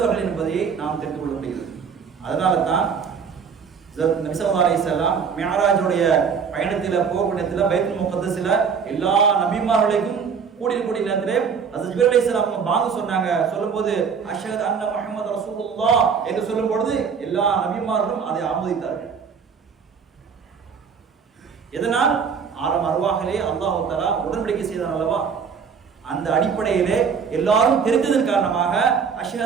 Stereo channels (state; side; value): quieter; left; 6.3 dB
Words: என்பதை நாம் தெரிந்து கொள்ள முடிகிறது. அதனால தான் நபி ஸல்லல்லாஹு அலைஹி வஸல்லம் மிஅராஜுடைய பயணத்தில் போகக்கூடியத்தில் பைத்துல் முகத்தஸில் எல்லா நபிமார்களுக்கும் கூடிய நேரத்திலே ஹஜ்ரத் ஜிப்ரீல் அலைஹிஸ்ஸலாம் பாங்க சொன்னாங்க. சொல்லும்போது அஷ்ஹது அன்ன முஹம்மது ரசூலுல்லாஹ் என்று சொல்லும்போது எல்லா நபிமார்களும் அதை ஆமோதித்தார்கள். எதனால் ஆரம் அருவாகலே அல்லாஹ் தஆலா உடன்படிக்கை செய்தான் அல்லவா, அந்த அடிப்படையிலே எல்லாரும் தெரிந்ததன் காரணமாக